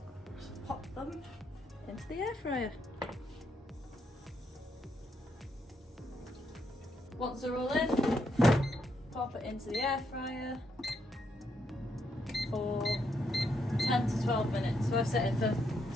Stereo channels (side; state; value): both; normal; correlation 0.77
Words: just pop them into the air fryer. Once they're all in, pop it into the air fryer for 10 to 12 minutes. So I've set it